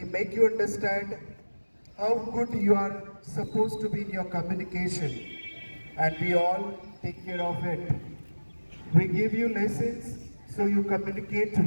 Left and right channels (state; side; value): inverted; both; correlation -1.00